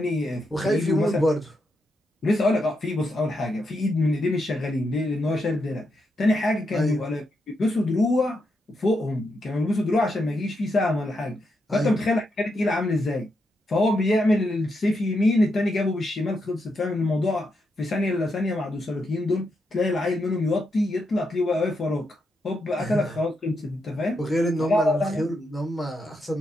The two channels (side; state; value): both; normal; correlation 0.83